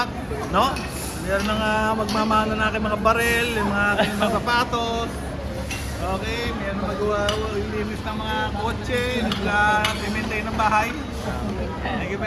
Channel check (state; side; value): identical; both; correlation 1.00